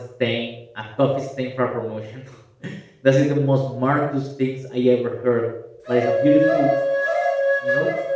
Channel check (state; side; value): identical; both; correlation 1.00